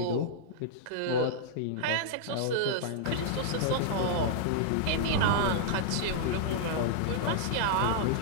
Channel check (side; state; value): both; different; correlation -0.01